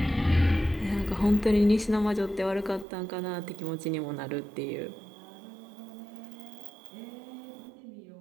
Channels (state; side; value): drops out; left; at 2.9 s